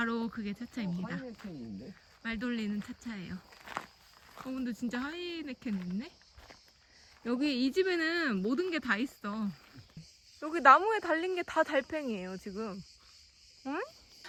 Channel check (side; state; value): both; identical; correlation 1.00